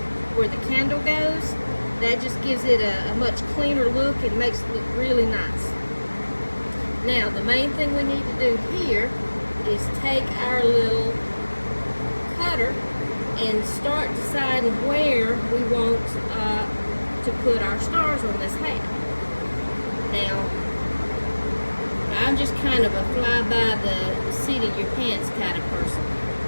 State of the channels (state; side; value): inverted; both; correlation -1.00